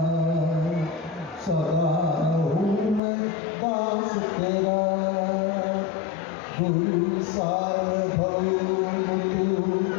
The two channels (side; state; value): right; drops out; at 3.0 s